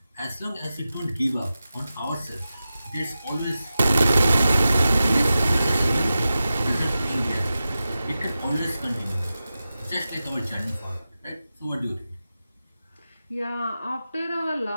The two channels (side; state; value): both; inverted; correlation -0.93